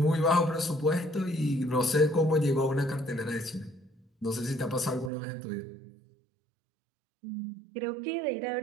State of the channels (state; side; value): drops out; left; at 5.1 s